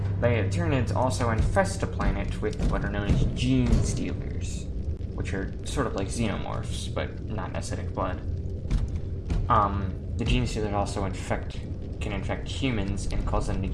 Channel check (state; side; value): identical; both; correlation 1.00